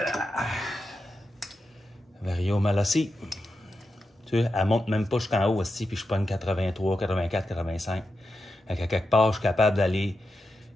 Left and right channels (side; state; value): both; normal; correlation 0.88